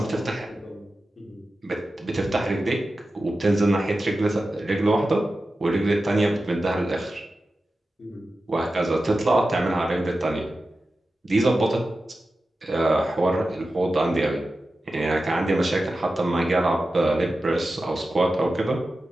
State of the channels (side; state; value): both; normal; correlation 0.93